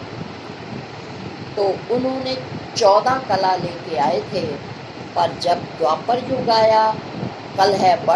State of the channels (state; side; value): identical; both; correlation 1.00